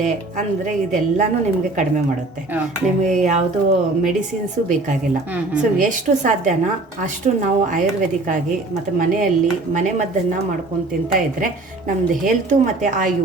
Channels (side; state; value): left; quieter; 3.1 dB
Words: ಅಂದ್ರೆ ಇದೆಲ್ಲಾನು ನಿಮ್ಗೆ ಕಡಿಮೆ ಮಾಡುತ್ತೆ. ನಿಮ್ಗೆ ಯಾವುದು ಮೆಡಿಸಿನ್ಸು ಬೇಕಾಗಿಲ್ಲ. ಸೊ ಎಷ್ಟು ಸಾಧ್ಯನಾ ಅಷ್ಟು ನಾವು ಆಯುರ್ವೇದಿಕ್ ಆಗಿ ಮತ್ತೆ ಮನೆಯಲ್ಲಿ ಮನೆ ಮದ್ದನ್ನ ಮಾಡ್ಕೊಂಡು ತಿಂತಾ ಇದ್ರೆ ನಮ್ದು ಹೆಲ್ತ್ ಮತ್ತೆ